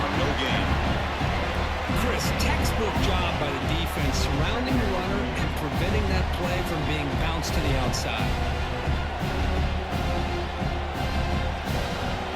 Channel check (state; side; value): identical; both; correlation 1.00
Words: for no gain. Chris, textbook job by the defense surrounding the runner and preventing that play from being bounced to the outside.